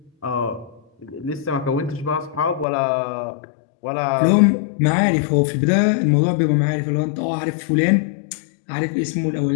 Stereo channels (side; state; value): right; drops out; at 2.7 s